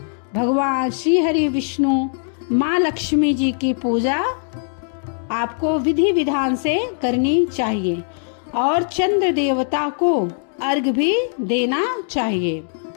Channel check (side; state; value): right; silent; digital silence